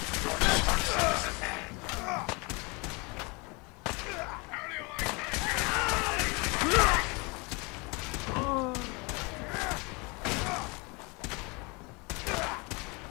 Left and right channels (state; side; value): quieter; right; 28.8 dB